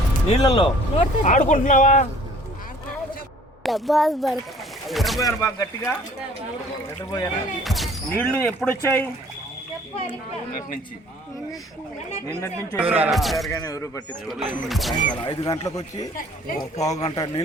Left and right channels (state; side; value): normal; both; correlation 0.54